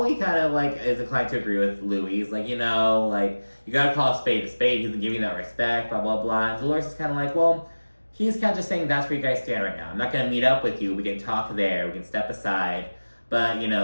kind of, like, is inclined to agree with Louie. He's like, you know, like, you gotta call a spade a spade. He doesn't give you that respect, blah, blah, blah. And Dolores is kind of like, well, he's kind of just saying that's where you guys stand right now. I'm not gonna meet up with you. We can talk there. We can step aside. But, you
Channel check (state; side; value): inverted; both; correlation -1.00